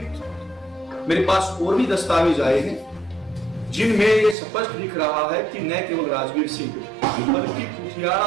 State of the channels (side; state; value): left; drops out; at 4.4 s